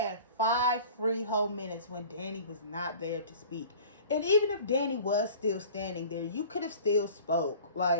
5 free whole minutes when Danny was not there to speak. And even if Danny was still standing there, you could have still spoke.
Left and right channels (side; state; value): both; inverted; correlation -0.43